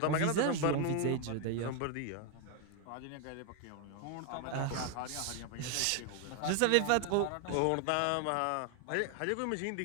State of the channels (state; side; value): different; both; correlation 0.01